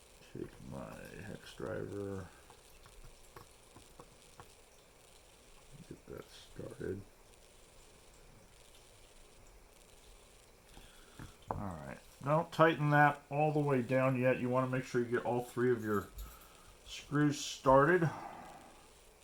Take my hex driver. Get that started. Alright, don't tighten that all the way down yet. You want to make sure you get all 3 of your screws started. I'm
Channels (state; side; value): identical; both; correlation 1.00